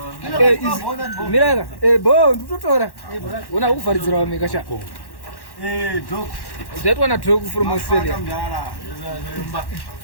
Miraga. Bo ndutotora. Una kuvharidzira wameka sha. Dog. That one a dog from Australia.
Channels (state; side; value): late; right; 1.1 ms